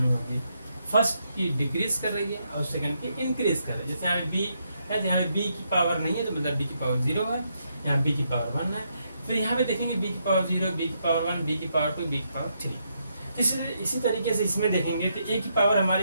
होगी। फर्स्ट की डिक्रीज कर रही है और सेकंड की इंक्रीज कर रही है। जैसे यहाँ बी है, यहाँ बी की पावर नहीं है तो मतलब बी की पावर 0 है, यहाँ बी की पावर 1 है। फिर यहाँ पे देखेंगे बी की पावर 0, बी की पावर 1, बी की पावर 2, बी की पावर 3। इसी तरीके से इसमें देखेंगे तो ए की पावर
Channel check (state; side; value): inverted; both; correlation -0.78